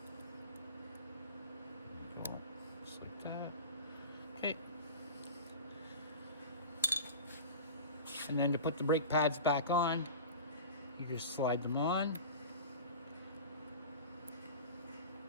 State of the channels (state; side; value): inverted; both; correlation -0.33